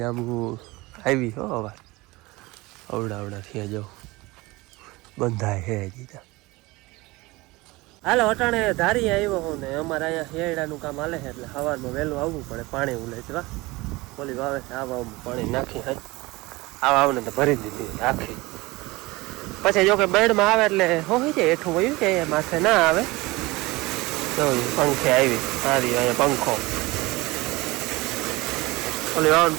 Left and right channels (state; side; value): quieter; left; 21.9 dB